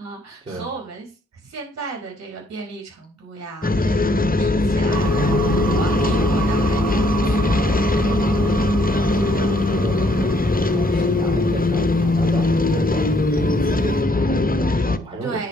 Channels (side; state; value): both; normal; correlation 0.67